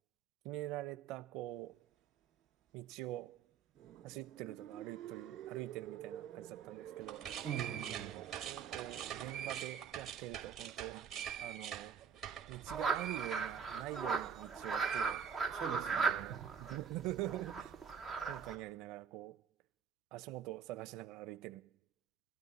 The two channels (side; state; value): left; quieter; 7.3 dB